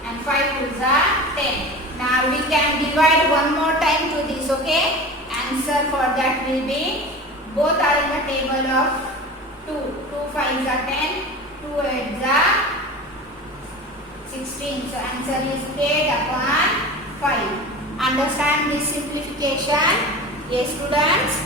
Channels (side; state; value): both; normal; correlation 0.34